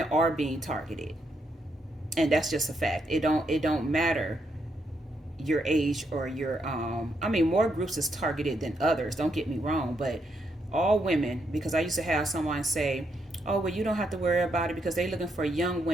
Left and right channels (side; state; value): both; normal; correlation 0.78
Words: are being targeted, and that's just a fact. It don't matter your age or your more groups is targeted than others, don't get me wrong, but all women, because I used to have someone say, oh, well, you don't have to worry about it because they're looking for young